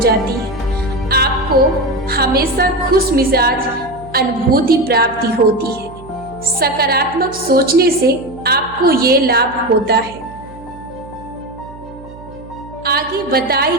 है। आपको हमेशा खुश मिजाज अनुभूति प्राप्ति होती है। सकारात्मक सोचने से आपको ये लाभ होता है। आगे बताई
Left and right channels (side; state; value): right; noise; hum, 18 dB below the sound